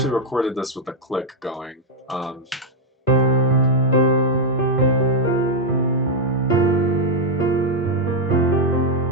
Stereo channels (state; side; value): normal; both; correlation 0.00